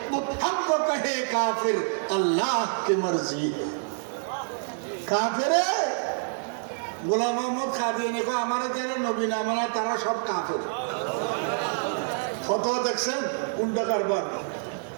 मुत्तहम तो कहे काफिर अल्लाह की मर्जी है। काफिर গোলাম মোহাম্মদ কাদিয়ানী কো আমারে যারা নবী না মানে তারা সব কাফের। ফতোয়া দেখছেন উল্টা কারবার।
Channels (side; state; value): left; silent; digital silence